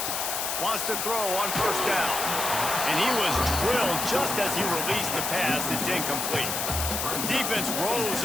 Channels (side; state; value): left; noise; hiss, 1 dB below the sound